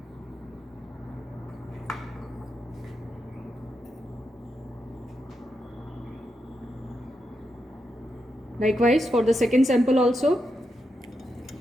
Likewise for the second sample also.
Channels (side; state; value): both; normal; correlation 0.85